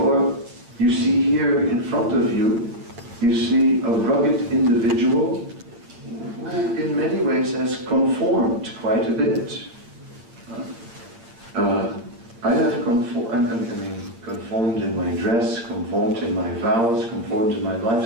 you see here in front of you, you see a rugged individual who in many ways has conformed quite a bit. I have conformed in my dress, conformed in my vows, conformed in my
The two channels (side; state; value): left; late; 8.6 ms